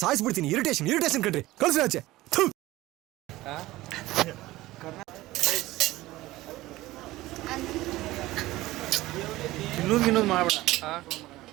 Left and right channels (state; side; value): quieter; left; 17.7 dB